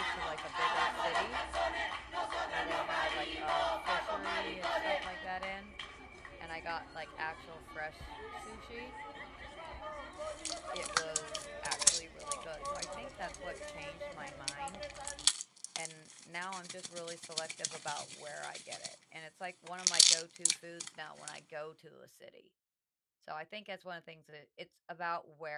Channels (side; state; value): both; identical; correlation 1.00